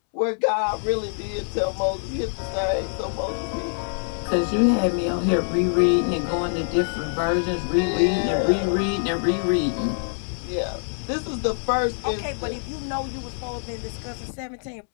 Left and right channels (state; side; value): silent; right; 62 dB below the other